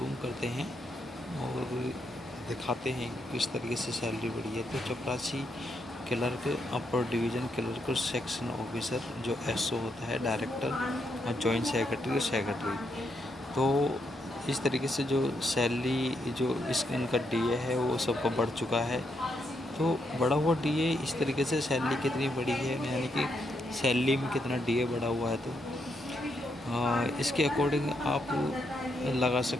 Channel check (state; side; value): normal; both; correlation 0.79